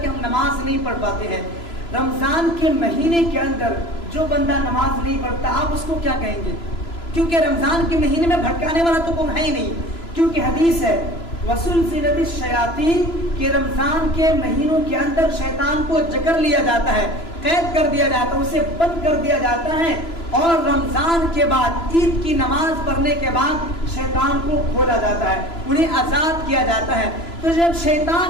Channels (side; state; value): right; late; 3.0 ms